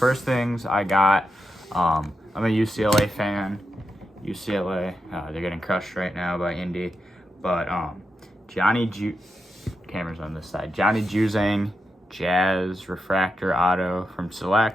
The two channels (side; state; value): both; normal; correlation 0.86